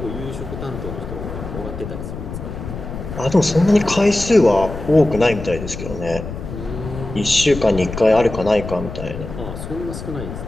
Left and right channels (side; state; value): left; noise; rumble, 9 dB below the sound